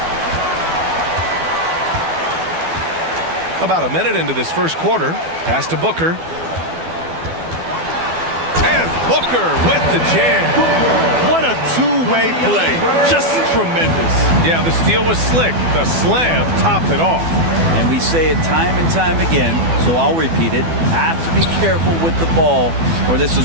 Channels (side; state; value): left; late; 12 ms